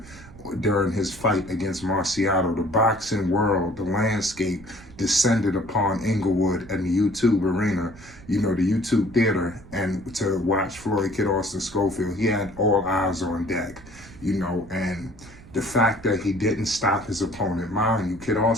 during his fight against Marciato. The boxing world, the landscape descended upon Inglewood and the YouTube arena, you know, the YouTube theater, and to watch Floyd Kid Austin Schofield. He had all eyes on deck, you know, and the fact that he didn't stop his opponent, mind you, Kid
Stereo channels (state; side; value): noise; right; rumble, 20 dB below the sound